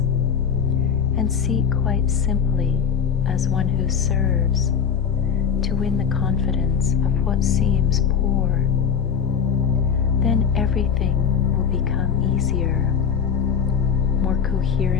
and seek quite simply as one who serves to win the confidence of what seems poor, then everything will become easier, more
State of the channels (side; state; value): right; quieter; 7.3 dB